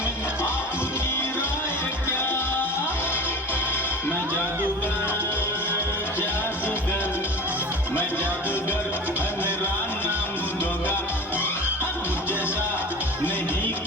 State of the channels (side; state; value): both; normal; correlation 0.32